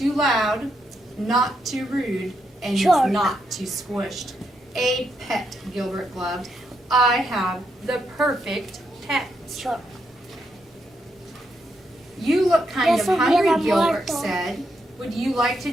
loud, not too rude, and Shark. not too squished. A pet, Gilbert gloved. I have the perfect pet. Shark. You look kind of Eso hungry, hubiera Gilbert muerto. said. Would you like to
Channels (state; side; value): normal; both; correlation 0.80